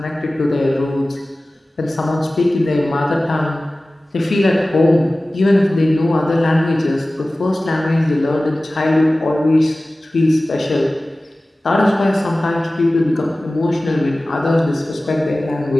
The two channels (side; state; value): both; normal; correlation 0.97